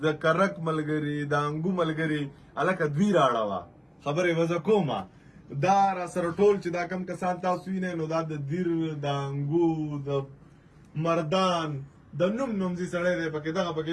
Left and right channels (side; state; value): both; identical; correlation 1.00